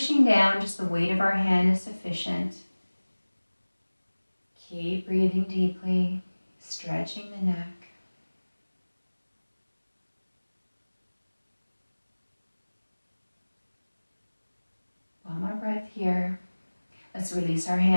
down, just the weight of our hand is sufficient. Keep breathing deeply, stretching the neck. One more breath here. Let's release our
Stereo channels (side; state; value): both; inverted; correlation -1.00